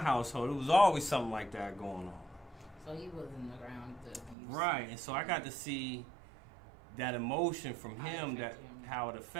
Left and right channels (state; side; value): drops out; left; at 4.4 s